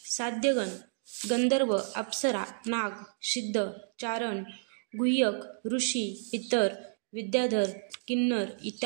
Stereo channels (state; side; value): silent; left; digital silence